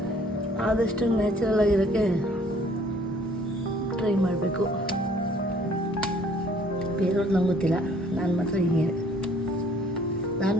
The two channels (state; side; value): normal; both; correlation 0.58